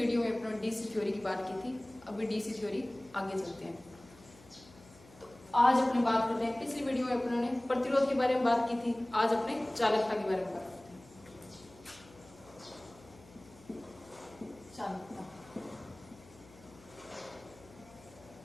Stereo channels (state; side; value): noise; left; hum, 23 dB below the sound